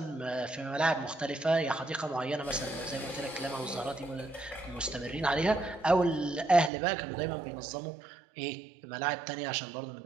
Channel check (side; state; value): left; drops out; at 6.7 s